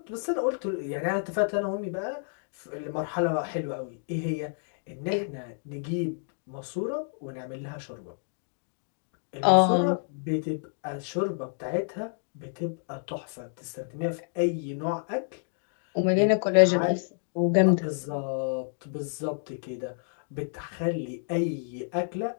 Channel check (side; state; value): right; silent; digital silence